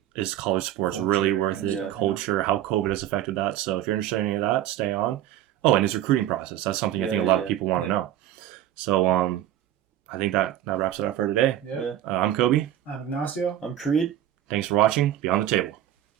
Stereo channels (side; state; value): left; quieter; 12.1 dB